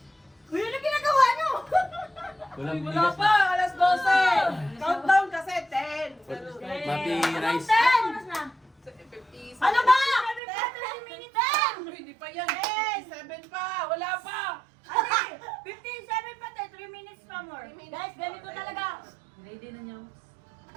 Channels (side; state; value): left; drops out; at 10.4 s